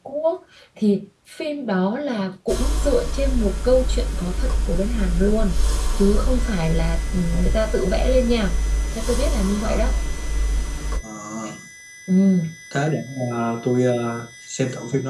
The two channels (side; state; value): both; identical; correlation 1.00